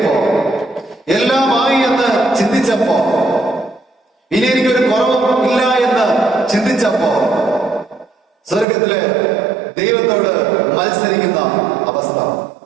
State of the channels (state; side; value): drops out; left; at 8.7 s